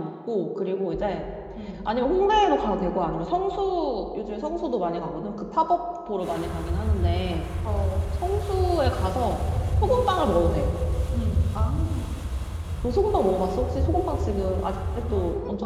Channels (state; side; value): identical; both; correlation 1.00